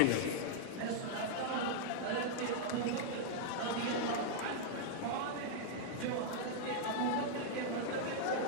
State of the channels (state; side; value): different; both; correlation -0.01